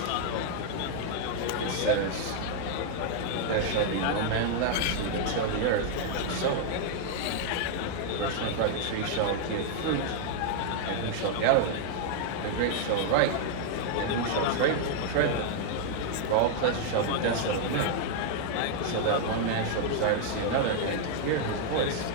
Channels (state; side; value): different; both; correlation 0.00